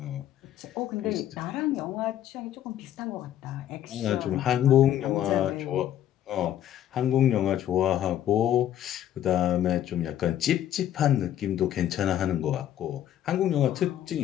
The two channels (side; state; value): right; quieter; 11.3 dB